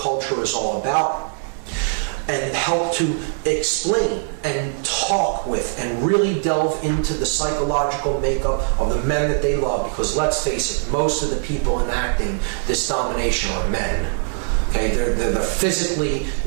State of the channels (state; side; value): silent; left; digital silence